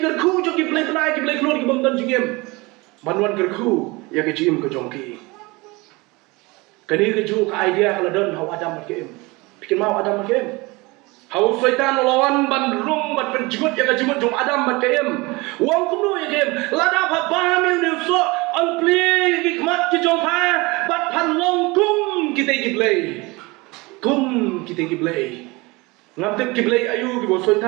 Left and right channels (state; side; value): quieter; left; 24.1 dB